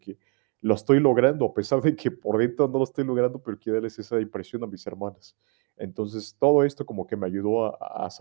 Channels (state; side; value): quieter; left; 37.1 dB